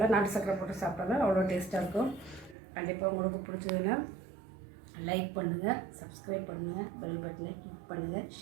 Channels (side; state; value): left; drops out; at 2.6 s